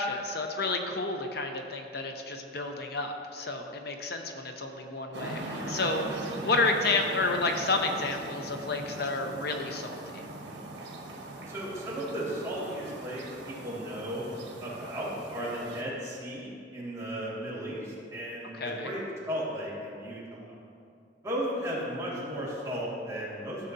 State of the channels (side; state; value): both; normal; correlation 0.13